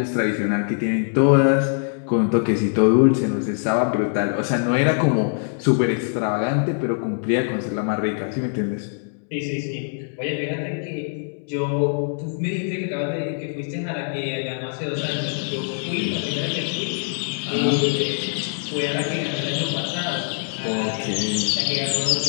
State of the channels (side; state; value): right; silent; digital silence